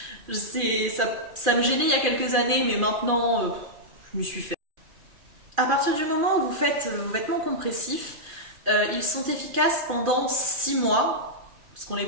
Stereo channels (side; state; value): left; late; 2.4 ms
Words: Ça me gênait il y a quelques années, mais maintenant, je m'y suis fait. À partir du moment où vous faites vos vêtements compressifs, ils sont efficaces pendant 6 mois, parce qu'on les